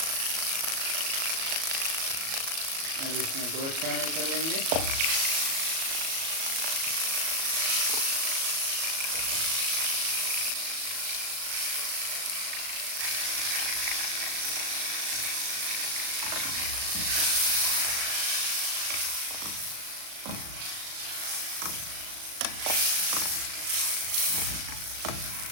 अब इसमें गोश्त शामिल कर लेंगे।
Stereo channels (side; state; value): left; late; 37 ms